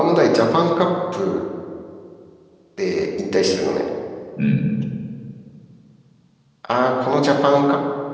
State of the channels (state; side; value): identical; both; correlation 1.00